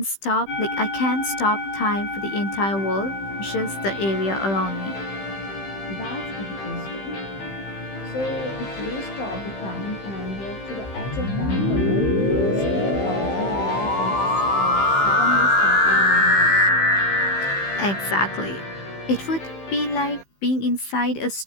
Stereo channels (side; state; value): right; late; 15 ms